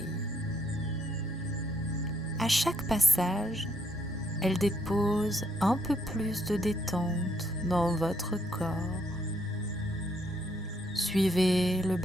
À chaque passage, elle dépose un peu plus de détente dans votre corps. Suivez le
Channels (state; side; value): normal; both; correlation 0.72